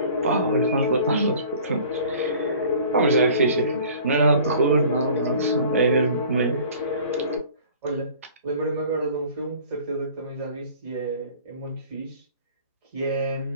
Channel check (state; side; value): inverted; both; correlation -0.48